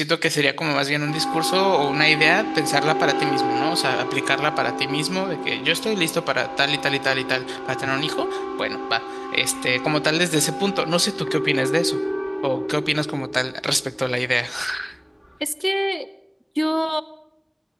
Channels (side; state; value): both; identical; correlation 1.00